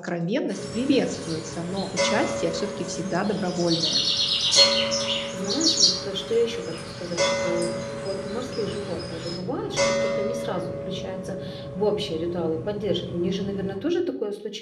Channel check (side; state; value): both; identical; correlation 1.00